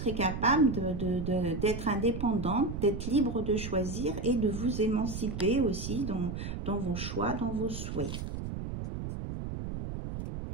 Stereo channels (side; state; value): right; noise; rumble, 6 dB below the sound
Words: capable d'être indépendante, d'être libre de choisir et de vous émanciper aussi dans vos choix, dans vos souhaits.